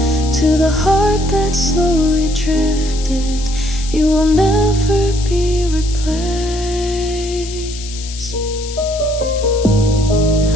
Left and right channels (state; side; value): noise; left; hiss, 12 dB below the sound